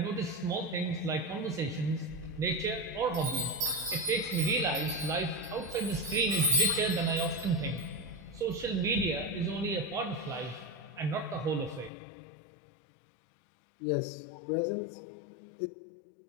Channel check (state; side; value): drops out; right; at 11.9 s